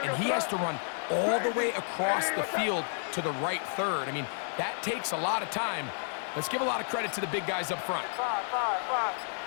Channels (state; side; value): silent; right; digital silence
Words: and he has to run all the way across the field to the right third. I mean, that takes a lot of time. Let's give a lot of credit to the big guys up front.